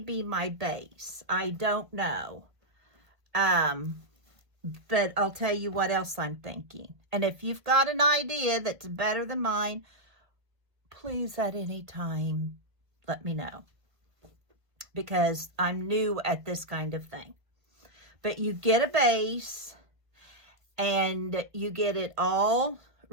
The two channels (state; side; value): late; left; 1.5 ms